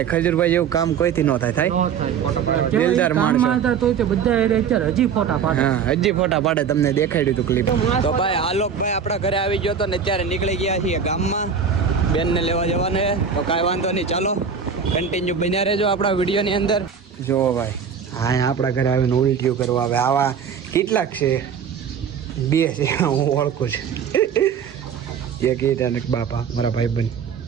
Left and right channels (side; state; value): left; quieter; 6.8 dB